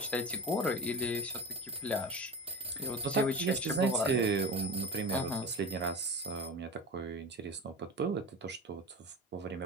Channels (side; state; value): both; normal; correlation 0.30